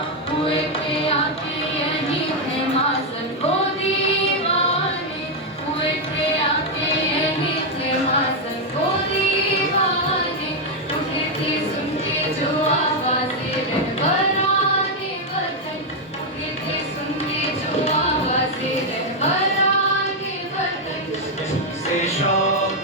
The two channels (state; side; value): normal; both; correlation 0.01